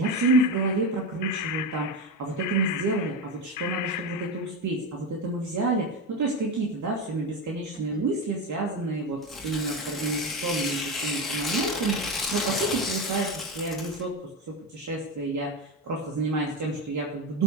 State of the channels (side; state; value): both; normal; correlation 0.17